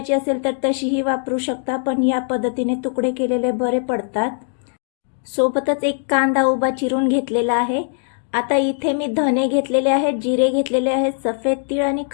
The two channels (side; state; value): right; silent; 59 dB below the other